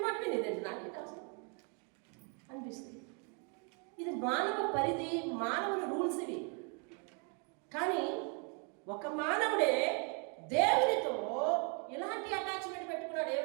మాట వినేదండి, నాకేంటి అవసరం అనిపిస్తుంది. ఇది మానవ పరిధి, మానవుని రూల్స్ ఇవి. కానీ ఒక మానవుడే దేవునితో ఇలాంటి అటాచ్మెంట్ పెట్టుకున్నాడు.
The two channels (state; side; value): quieter; left; 37.7 dB